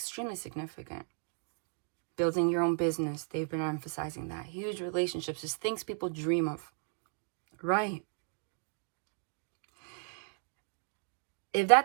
significant. Building your own business. They've been emphasizing that. Huge relationships. Just things people dream of. Right. If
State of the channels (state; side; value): silent; left; 54 dB below the other